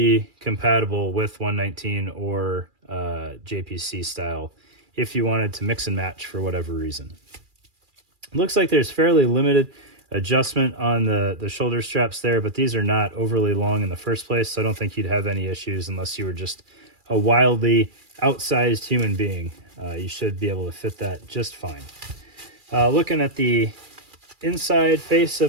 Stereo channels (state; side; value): late; left; 2.4 ms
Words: compatible with 119 or JPC style if you wanted to mix and match for whatever reason. It looks like there's fairly limited adjustment on the shoulder straps there, but these are not overly long in the first place, so I don't think you'd have any issues unless you were just a wildly outsized human being. You should be able to fit that just fine. Looking at the inside face